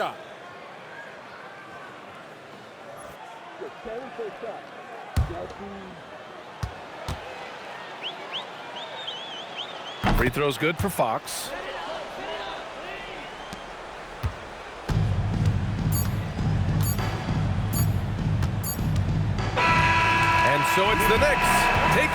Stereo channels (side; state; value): both; identical; correlation 1.00